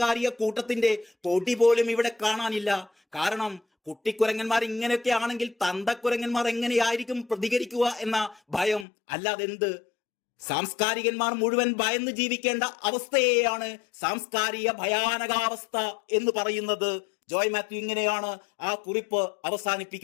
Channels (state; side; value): drops out; right; at 8.8 s